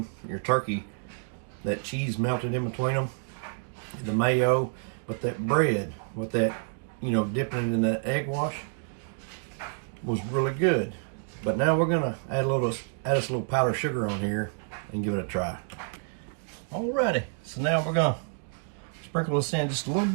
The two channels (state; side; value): silent; left; 59 dB below the other